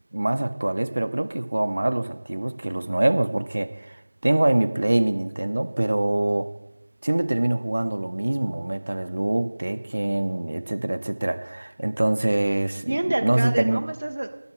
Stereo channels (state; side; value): inverted; both; correlation -1.00